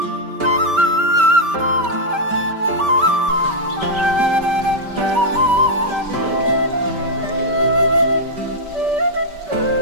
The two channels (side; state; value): left; late; 5.1 ms